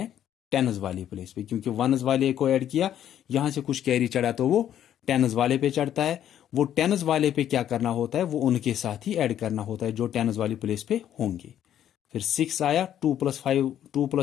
टेन्स वाली प्लेस पे, क्योंकि वनस वाले को ऐड किया, यहां से कुछ कैरी चढ़ा तो वो टेन्स वाले पे चढ़ता है। वो टेन्स वाले पे क्या करना होता है, वो उनके साथ ही ऐड करना होता है जो टेन्स वाली प्लेस पे होंगे। फिर 6 आया, 2 + 5, 2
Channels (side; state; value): right; quieter; 10.7 dB